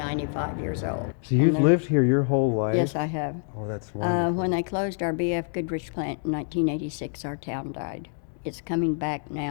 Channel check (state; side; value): silent; right; 61 dB below the other